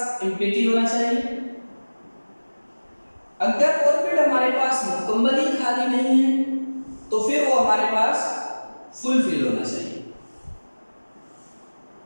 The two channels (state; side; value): inverted; both; correlation -1.00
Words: एम्प्टी होना चाहिए। अगर ऑर्बिट हमारे पास मुकम्मल ही खाली नहीं है तो फिर वो हमारे पास फुल फील्ड होना चाहिए।